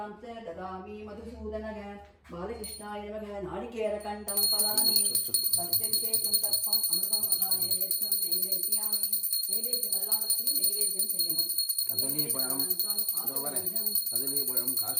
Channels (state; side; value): identical; both; correlation 1.00